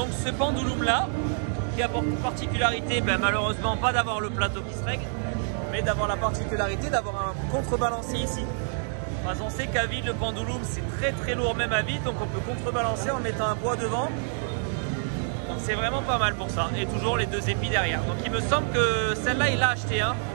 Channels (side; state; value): left; silent; 59 dB below the other